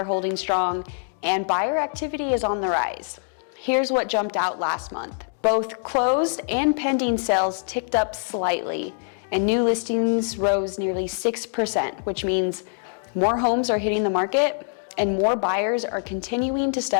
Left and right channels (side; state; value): right; silent; 62 dB below the other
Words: holding strong, and buyer activity is on the rise. Here's what jumped out last month. Both closed and pending sales ticked up slightly, and new listings rose nearly 6%, which means more homes are hitting the market and more buyers are continuing to